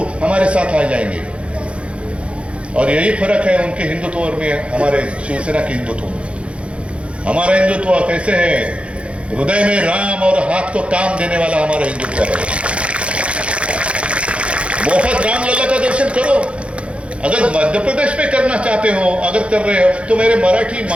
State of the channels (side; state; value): left; late; 0.060 ms